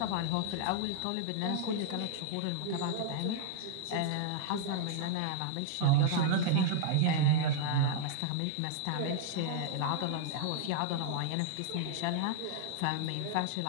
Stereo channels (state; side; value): different; both; correlation -0.01